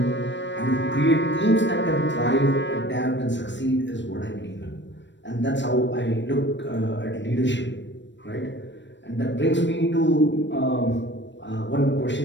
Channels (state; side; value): late; right; 0.53 ms